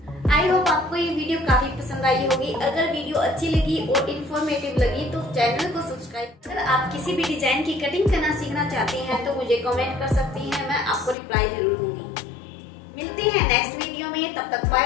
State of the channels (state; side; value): drops out; right; at 11.2 s